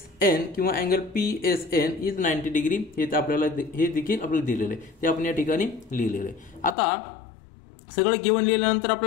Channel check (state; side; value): drops out; right; at 6.8 s